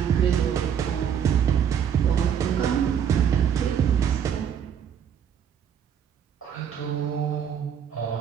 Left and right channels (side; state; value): left; quieter; 8.4 dB